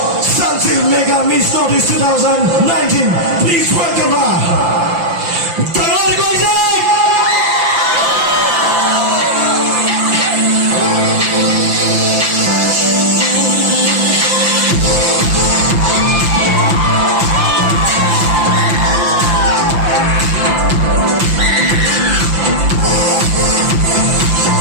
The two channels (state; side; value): late; left; 5.8 ms